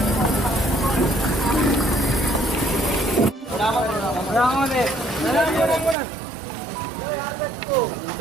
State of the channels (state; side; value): drops out; left; at 6.0 s